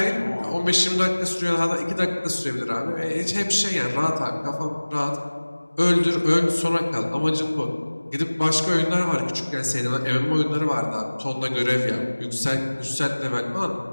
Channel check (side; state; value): both; inverted; correlation -1.00